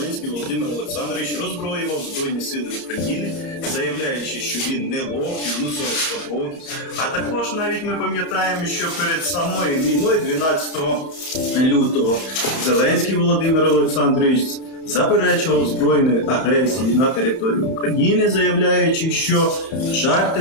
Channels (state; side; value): late; right; 31 ms